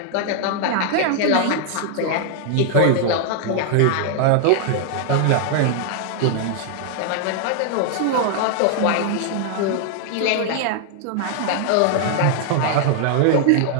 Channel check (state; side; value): different; both; correlation 0.00